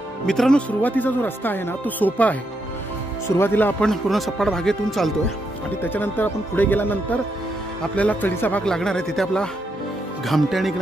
मित्रांनो, सुरुवातीचा जो रस्ता आहे ना, तो सोपा आहे. सुरुवातीला आपण पूर्ण सपाट भागेतून चालतोय आणि त्याच्यानंतर आपण पुढे गेल्यानंतर आपल्याला चढीचा भाग लागणार आहे. तिथे आपला घामट्या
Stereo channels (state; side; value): normal; both; correlation 0.80